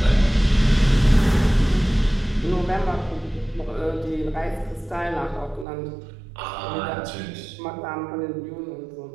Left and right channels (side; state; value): left; drops out; at 5.7 s